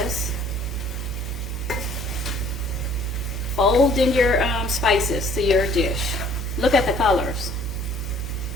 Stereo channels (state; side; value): noise; right; hum, 12 dB below the sound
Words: Fold in your spices to your dish. Look at the colors.